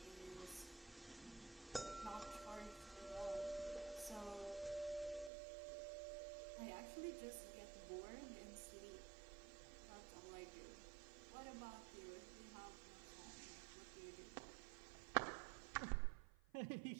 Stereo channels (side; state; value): left; drops out; at 5.3 s